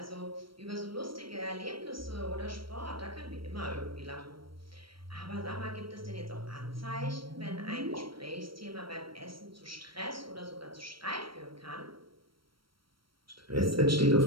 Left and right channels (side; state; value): left; late; 0.74 ms